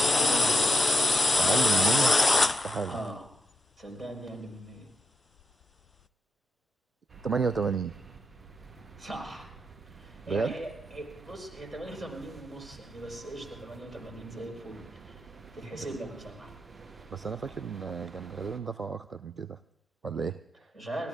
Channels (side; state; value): both; normal; correlation 0.85